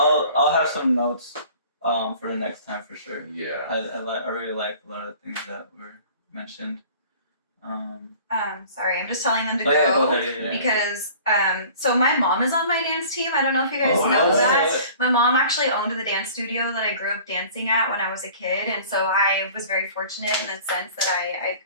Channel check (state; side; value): inverted; both; correlation -0.47